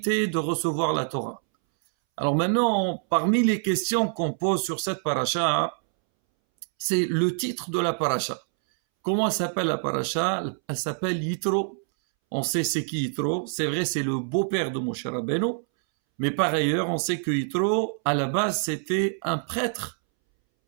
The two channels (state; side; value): silent; left; 61 dB below the other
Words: de recevoir la Torah. Alors maintenant, parmi les questions qu'on pose sur cette paracha, c'est le titre de la paracha. Comment s'appelle la paracha? Elle s'appelle Yitro. On sait c'est qui Yitro. C'est vrai, c'est le beau-père de Moshe Rabbeinu. Mais par ailleurs, on sait que Yitro, à la base, c'était un prêtre.